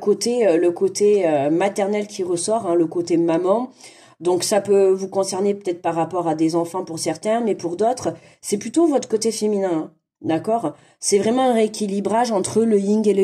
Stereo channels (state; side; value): identical; both; correlation 1.00